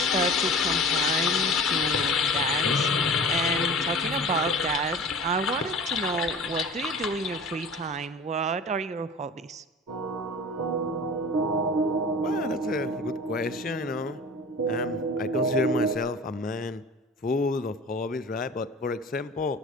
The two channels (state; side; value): normal; both; correlation 0.40